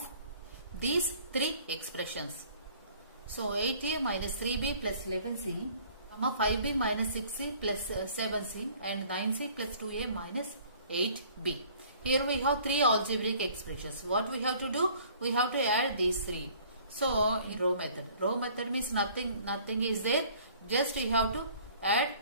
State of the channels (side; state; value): both; inverted; correlation -0.54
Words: these three expressions. So 8a minus 3b plus 11c, 5b minus 6c plus 7c and 9c plus 2a minus 8b. Here we have three algebraic expressions. What we have to do? We have to add these three. So in row method. Row method means nothing is there. Just you have to add.